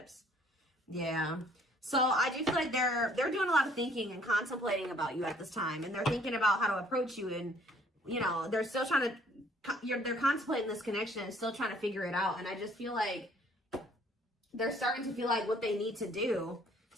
Yeah. So I do feel like they're doing a lot of thinking and contemplating about you at this time. And they're thinking about how to approach you. And, you know, they're still trying to, they're contemplating this connection and still trying to figure it out. And I just feel like they're starting to feel like what they need to do.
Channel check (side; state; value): both; normal; correlation 0.60